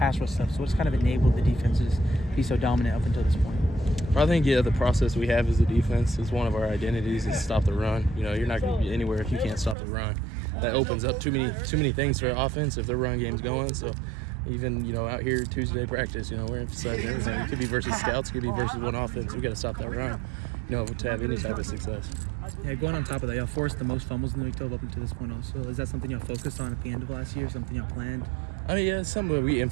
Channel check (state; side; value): drops out; left; at 9.8 s